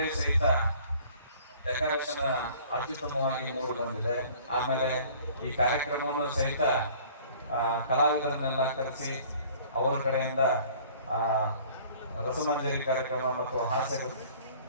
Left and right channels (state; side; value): inverted; both; correlation -0.51